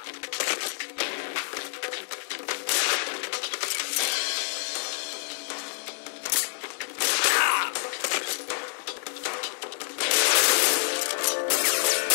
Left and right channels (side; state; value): right; silent; digital silence